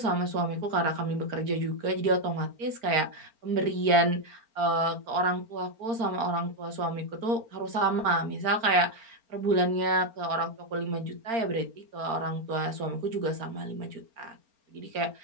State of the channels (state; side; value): late; left; 4.4 ms